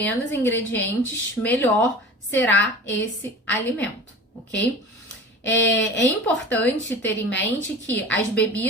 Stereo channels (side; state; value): both; normal; correlation 0.37